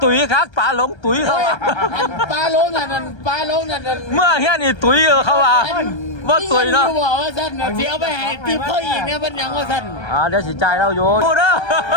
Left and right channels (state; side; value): late; right; 1.3 ms